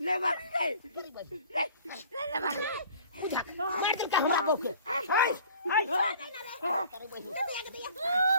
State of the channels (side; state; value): both; inverted; correlation -0.49